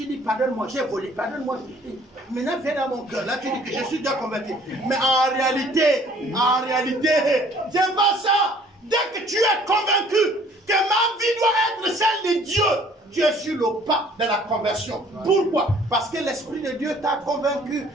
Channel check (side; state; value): both; normal; correlation 0.56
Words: dis, pardonne-moi, j'ai volé, pardonne-moi. Maintenant, viens dans mon cœur. Là, tu dis que je suis déjà converti. Mais en réalité, c'est pas ça. Dès que tu es convaincu que ma vie doit être celle de Dieu, tu es sur le pas de la conversion. Pourquoi? Parce que l'Esprit de Dieu t'a convaincu